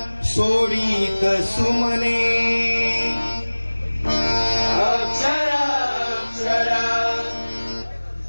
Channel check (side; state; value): both; inverted; correlation -1.00